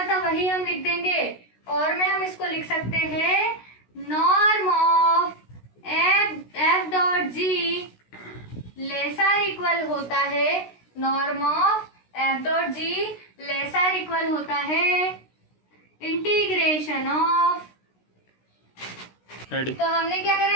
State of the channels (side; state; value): right; late; 16 ms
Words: था वही हम लिख देंगे, और में हम इसको लिख सकते हैं norm of f dot g lesser equal होता है, norm of f dot g lesser equal होता है इंटीग्रेशन ऑफ। तो हमने क्या